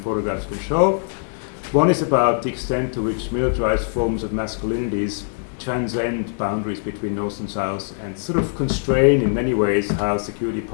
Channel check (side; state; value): right; silent; digital silence